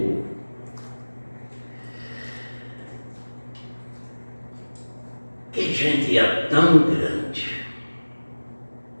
Que gente é tão grande?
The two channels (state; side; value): inverted; both; correlation -1.00